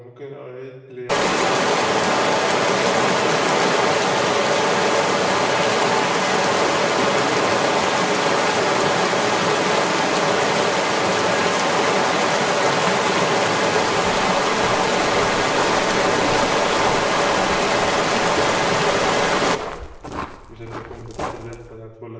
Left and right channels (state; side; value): identical; both; correlation 1.00